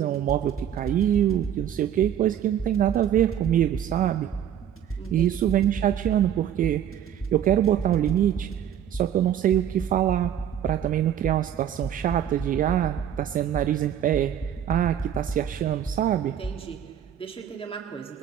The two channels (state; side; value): quieter; left; 9.9 dB